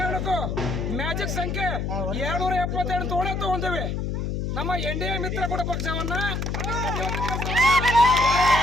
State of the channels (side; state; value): left; noise; hum, 2 dB below the sound